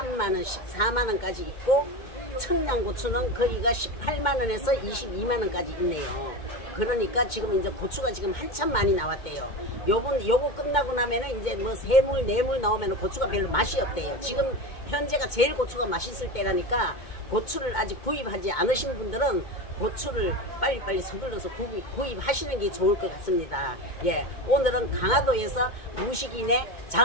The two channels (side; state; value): right; late; 2.1 ms